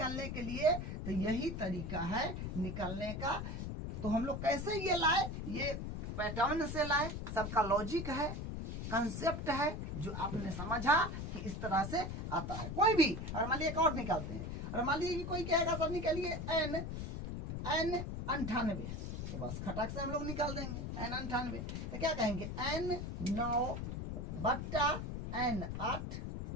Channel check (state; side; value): noise; left; rumble, 5 dB below the sound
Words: के लिए तो यही तरीका है निकालने का। तो हम लोग कैसे ये लाए, ये पैटर्न से लाए, सबका लॉजिक है, कंसेप्ट है जो आपने समझा कि इस तरह से आता है। कोई भी और मान लीजिए एक और निकालते हैं, और मान लीजिए कि कोई कहेगा सर निकालिए n 98 तो बस खटाक से हम लोग निकाल देंगे n 98 तो क्या कहेंगे n 9 बट्टा n 8